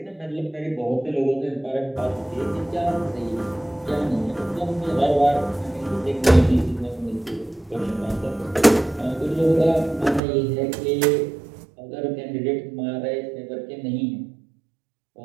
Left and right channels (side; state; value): left; drops out; at 10.2 s